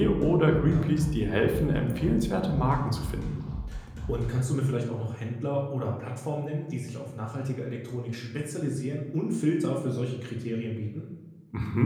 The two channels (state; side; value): identical; both; correlation 1.00